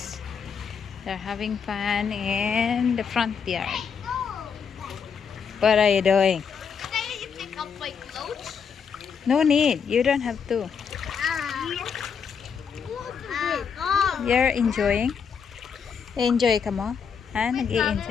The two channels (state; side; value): quieter; right; 6.6 dB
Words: They're having fun in the front yard. What are you doing? Can you pick up my clothes? No need. You don't have to. You're enjoying? Enjoy ka mo? Ha?